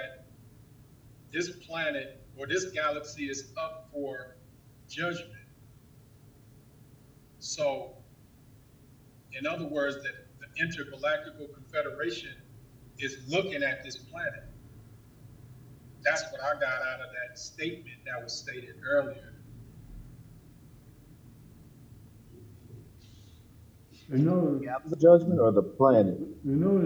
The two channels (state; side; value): identical; both; correlation 1.00